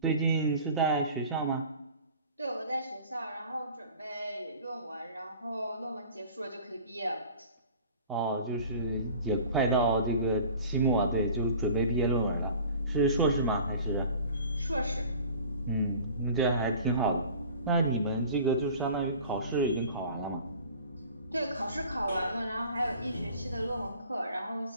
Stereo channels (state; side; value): inverted; both; correlation -0.44